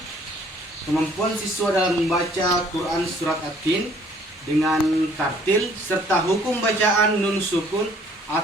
kemampuan siswa dalam membaca Quran surat At-Tin dengan tartil serta hukum bacaan nun sukun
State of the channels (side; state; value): both; normal; correlation 0.59